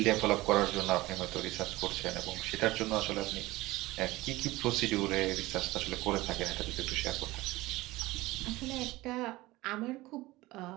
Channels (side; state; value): left; quieter; 19.3 dB